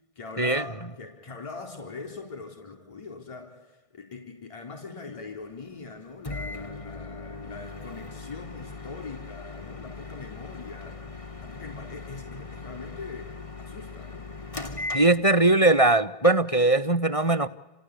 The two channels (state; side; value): late; right; 1.6 ms